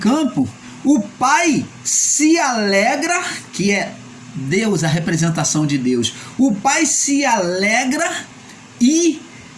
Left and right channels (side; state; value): both; identical; correlation 1.00